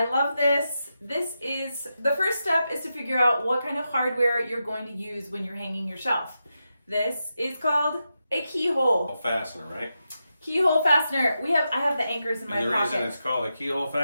love this. The first step is to figure out what kind of hardware you're going to use when you're hanging your shelf. This is called a keyhole. Fastener, right? Keyhole fastener. I have the anchors in my And the pocket. reason it's called a keyhole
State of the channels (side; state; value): both; inverted; correlation -0.88